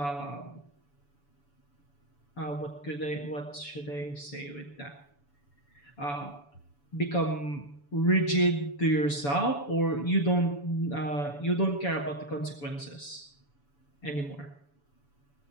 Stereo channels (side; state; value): right; late; 7.0 ms